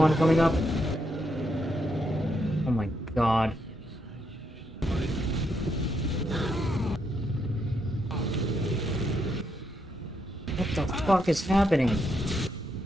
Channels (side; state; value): both; normal; correlation 0.78